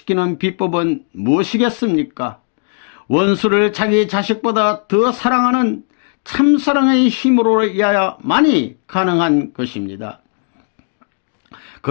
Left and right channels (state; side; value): silent; right; 56 dB below the other